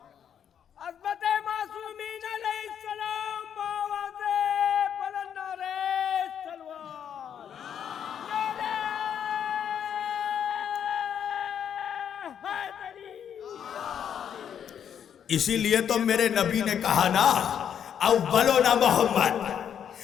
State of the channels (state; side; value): quieter; right; 8.7 dB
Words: اسی لیے تو میرے نبی نے کہا نا اولونا